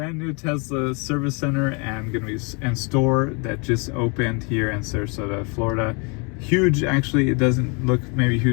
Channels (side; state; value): right; quieter; 33.4 dB